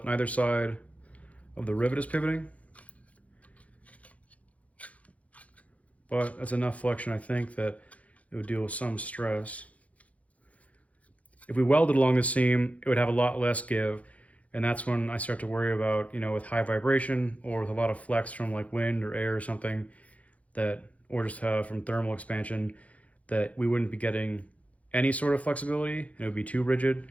neither side of the rivet is pivoting. But that's enough flexion, I think, that it would deal with some stress. If we welded along the seam, it would have a lot less give, and that's when I start to worry about, you know, with high vibration or with a lot of flex from like wind or air or something, that, or just from thermal expansion, that we wouldn't be getting any sort of flexibility and it would be too rigid.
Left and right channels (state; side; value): late; right; 0.067 ms